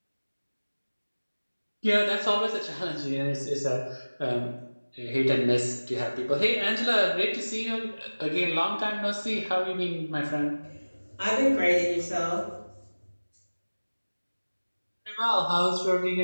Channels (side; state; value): both; inverted; correlation -1.00